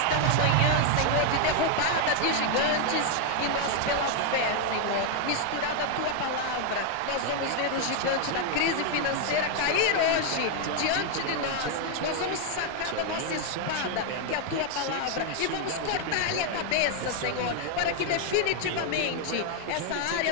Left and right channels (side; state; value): both; different; correlation 0.00